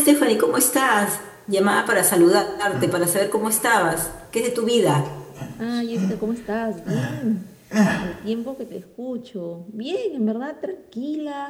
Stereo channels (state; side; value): identical; both; correlation 1.00